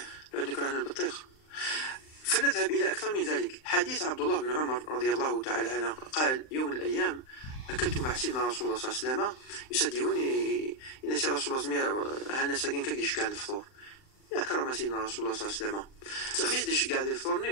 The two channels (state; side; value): late; right; 39 ms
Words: لأن كرهنا البطيخ. فنذهب إلى أكثر من ذلك. حديث عبد الله بن عمر رضي الله تعالى عنه قال يوم من الأيام أكلت مع سيدنا رسول الله صلى الله عليه وسلم يسديوني إن سي رسول الله هانا ساكن كاكديش كان الفطور أكرم سيدنا رسول الله صلى الله عليه وسلم ميديش كاع